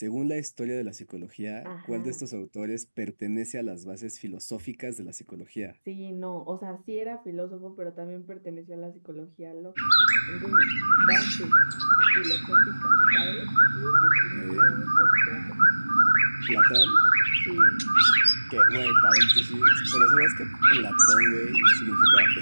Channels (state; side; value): inverted; both; correlation -1.00